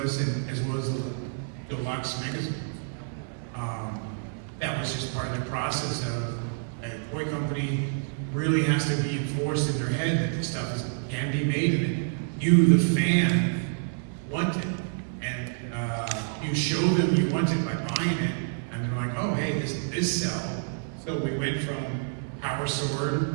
and as well as the deluxe magazine. That was just part of the process of a toy company really has to be enforced in their head that this stuff can be made, and that you, the fan, want it. And you show them you want it by buying it, and they're like, oh, hey, this sell. So we went from Power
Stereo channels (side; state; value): left; silent; digital silence